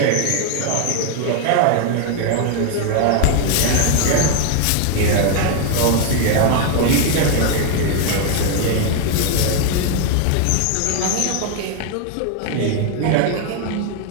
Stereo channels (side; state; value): both; different; correlation 0.00